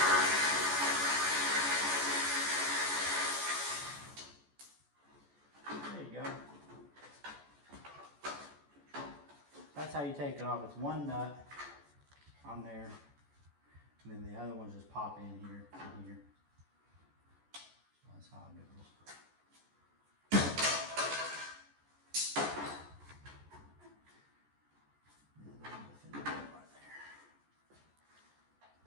There you go. That's how you take it off. It's one nut on there, and then the other ones just pop in here and here. So that's how it goes. And then the finish right there.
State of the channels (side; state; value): left; late; 14 ms